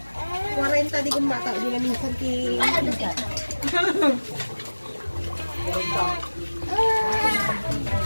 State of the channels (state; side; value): inverted; both; correlation -1.00